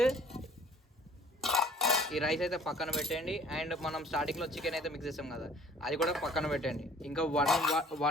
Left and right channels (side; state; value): both; normal; correlation 0.52